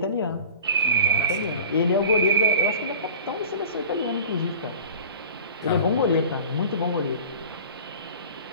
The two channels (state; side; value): inverted; both; correlation -0.40